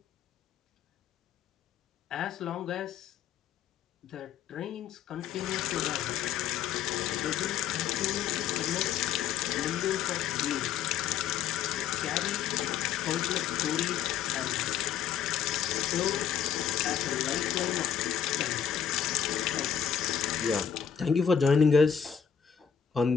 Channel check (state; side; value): quieter; right; 8.2 dB